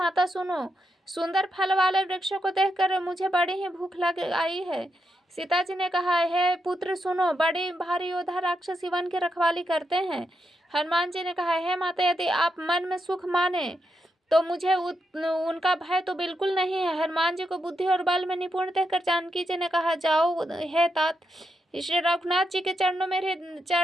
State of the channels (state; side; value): normal; both; correlation 0.83